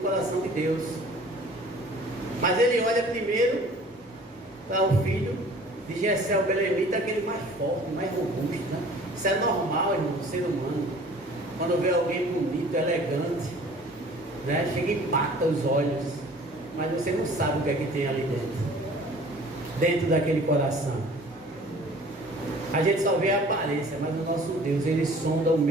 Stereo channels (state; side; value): normal; both; correlation 0.49